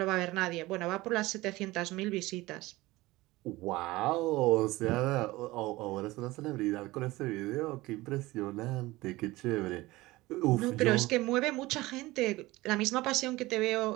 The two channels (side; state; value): left; quieter; 19.6 dB